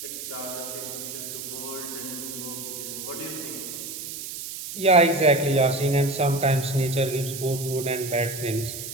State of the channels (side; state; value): right; noise; hiss, 8 dB below the sound